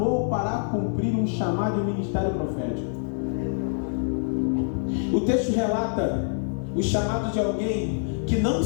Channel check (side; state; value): right; silent; digital silence